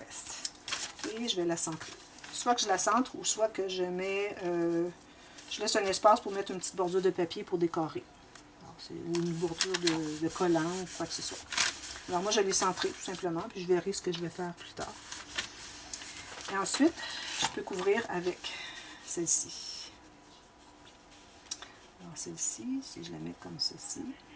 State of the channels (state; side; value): identical; both; correlation 1.00